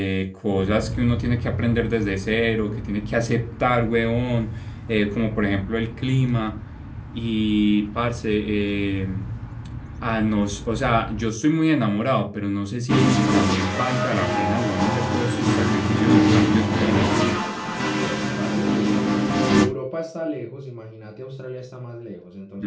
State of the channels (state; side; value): identical; both; correlation 1.00